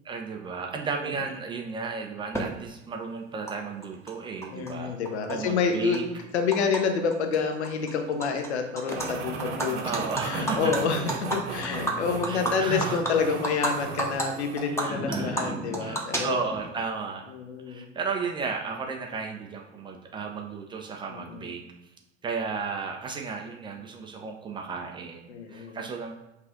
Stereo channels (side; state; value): both; normal; correlation 0.20